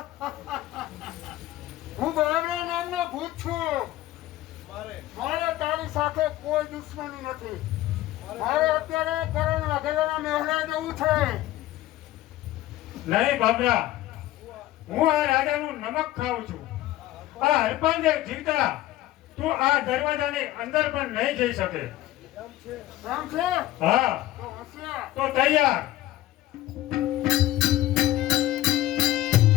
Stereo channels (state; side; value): quieter; right; 15.5 dB